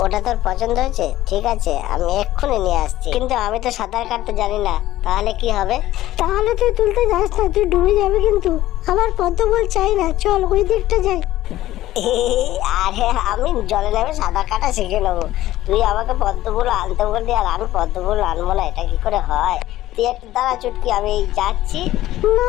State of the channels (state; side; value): quieter; right; 14.9 dB